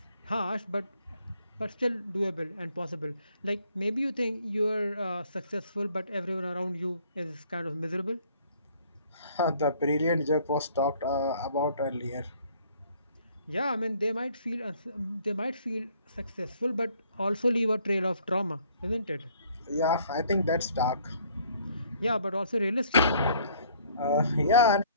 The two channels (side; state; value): both; inverted; correlation -0.60